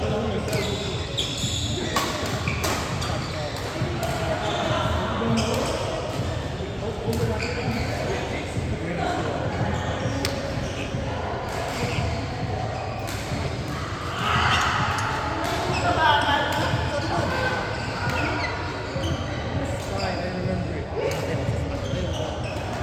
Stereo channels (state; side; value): identical; both; correlation 1.00